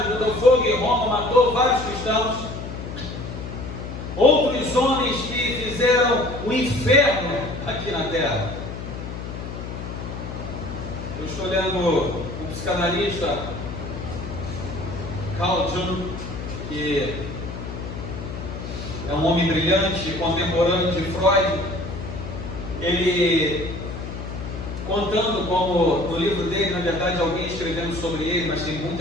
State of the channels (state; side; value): noise; left; hum, 8 dB below the sound